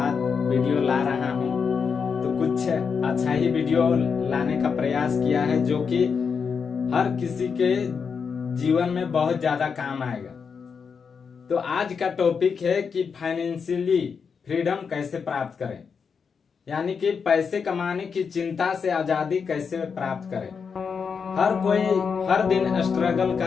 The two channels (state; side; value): quieter; right; 6.0 dB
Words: वीडियो ला रहा हूँ, तो कुछ अच्छा ही वीडियो लाने का प्रयास किया है जो कि हर किसी के जीवन में बहुत ज्यादा काम आएगा। तो आज का टॉपिक है कि फाइनेंशियली फ्रीडम कैसे प्राप्त करें, यानी कि पैसे कमाने की चिंता से आजादी कैसे प्राप्त करें। हर कोई हर दिन स्ट्रगल